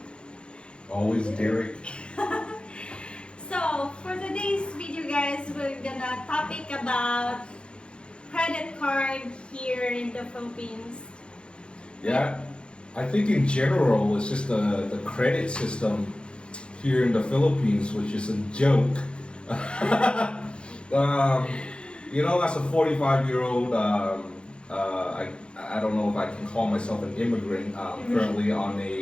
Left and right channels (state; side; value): late; right; 0.055 ms